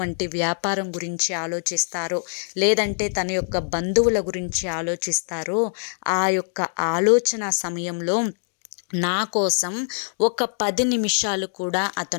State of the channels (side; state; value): right; silent; digital silence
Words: వ్యాపారం గురించి ఆలోచిస్తారో, లేదంటే తన యొక్క బంధువుల గురించి ఆలోచిస్తారో, ఆ యొక్క ఆలోచన సమయంలో నా కోసం ఒక 10 నిమిషాలు కూడా